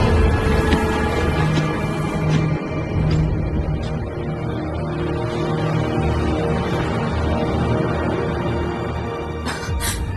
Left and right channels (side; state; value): both; identical; correlation 1.00